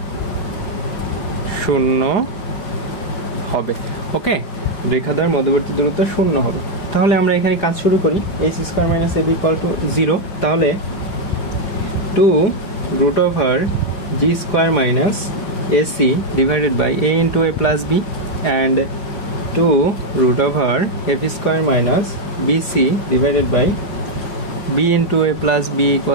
0 হবে। ওকে, রেখাদ্বয়ের মধ্যবর্তী দূরত্ব 0 হবে। তাহলে আমরা এখানে কাজ শুরু করি। H square minus A B equal to 0, তাহলে 2 root over G square minus AC divided by A into A plus B and 2 root over F square minus BC divided by B into A plus B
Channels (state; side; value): late; right; 4.9 ms